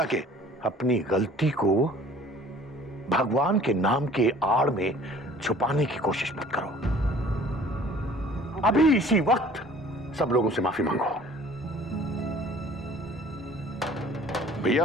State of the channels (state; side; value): normal; both; correlation 0.51